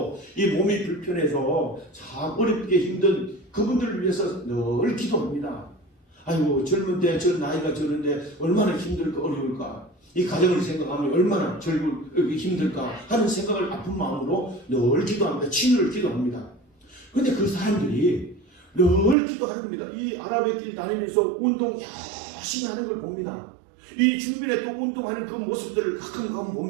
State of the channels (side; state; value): left; drops out; at 19.2 s